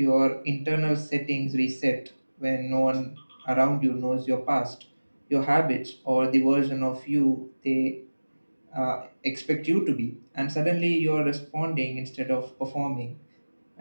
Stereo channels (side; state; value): both; inverted; correlation -1.00